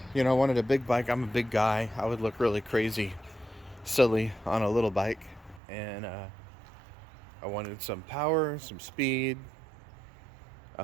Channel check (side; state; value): left; drops out; at 5.6 s